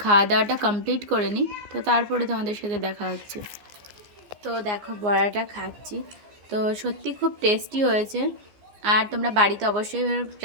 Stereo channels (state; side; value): late; left; 14 ms